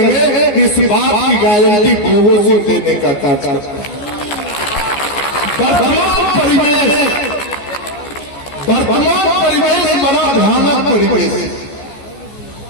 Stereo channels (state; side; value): late; right; 14 ms